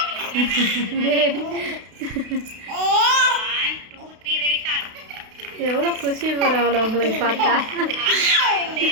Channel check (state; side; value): late; left; 32 ms